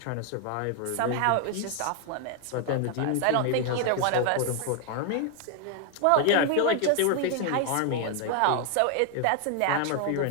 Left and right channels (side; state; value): both; different; correlation 0.00